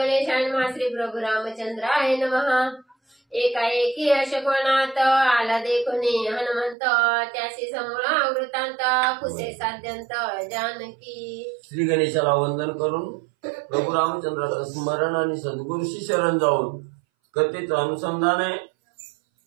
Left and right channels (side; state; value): left; drops out; at 6.8 s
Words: श्री प्रभु रामचंद्राय नमः। एकाएकी अशकोणात आला देखुनी हनुमंत, त्याशी समूळा वृत्तांत कुसे साध्यंत जानकी। श्री गणेशाला वंदन करून प्रभु रामचंद्राचं स्मरण आणि सद्गुरूशी शरण जाऊन कथेचं अनुसंधान आहे।